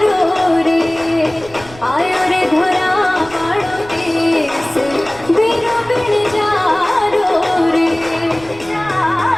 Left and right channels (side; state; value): right; noise; rumble, 19 dB below the sound